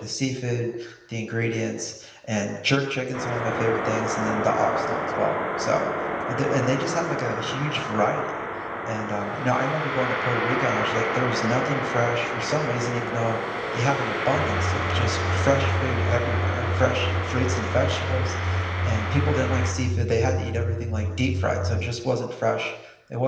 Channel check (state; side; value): identical; both; correlation 1.00